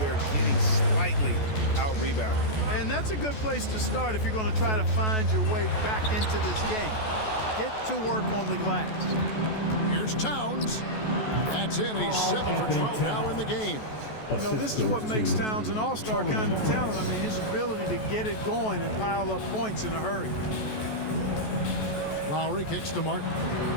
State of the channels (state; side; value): late; right; 14 ms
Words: getting slightly out-rebounded. And that's a good place to start if you're going to try to find your way back into this game. Get to work on the glass. Here's Towns. That's in. He's 7 for 12 now in the game. You know, this is what makes Towns an all-star kind of talent. I mean, his ability to get it going and pile up points in a hurry. Lowry kicks to Martin.